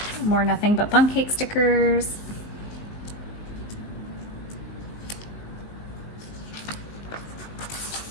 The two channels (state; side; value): late; right; 19 ms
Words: More nothing but bun cake stickers.